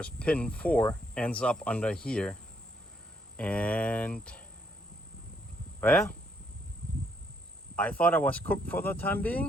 pin 4 ends up under here, and well, I thought I was cooked for the time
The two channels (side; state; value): both; normal; correlation 0.72